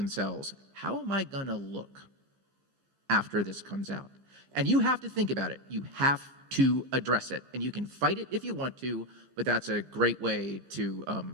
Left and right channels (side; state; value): left; late; 15 ms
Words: how am I going to look after this comes out? And you have to think about it. You have to address it. And you can fight it if you want to, but that's a great way to